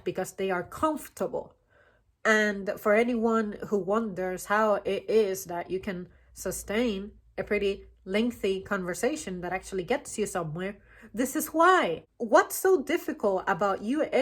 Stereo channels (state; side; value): identical; both; correlation 1.00